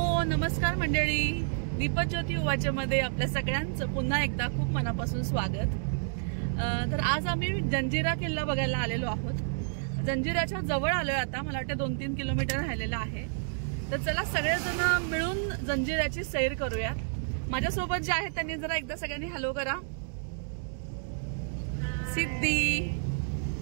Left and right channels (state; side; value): silent; left; digital silence